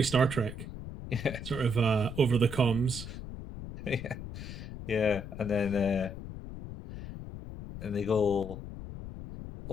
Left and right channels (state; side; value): noise; left; rumble, 10 dB below the sound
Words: Star Trek, yeah, sort of over the comms. yeah, yeah." And they go,